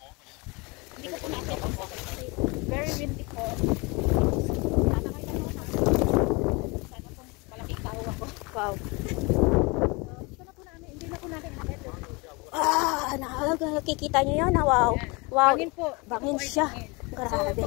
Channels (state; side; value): quieter; right; 27.7 dB